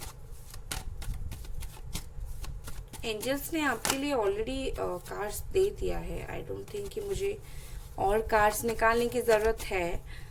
एंजल्स ने आपके लिए ऑलरेडी कार्ड्स दे दिया है। आई डोंट थिंक कि मुझे और कार्ड्स निकालने की जरूरत है,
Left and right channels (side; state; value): both; identical; correlation 1.00